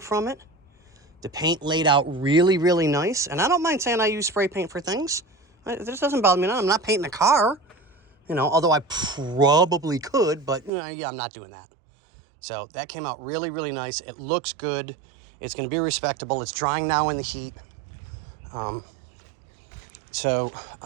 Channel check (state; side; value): drops out; left; at 10.7 s